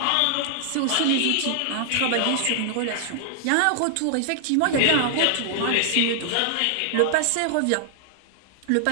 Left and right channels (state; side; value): different; both; correlation -0.01